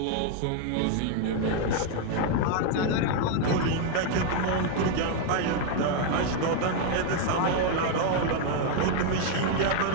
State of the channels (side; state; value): both; different; correlation 0.00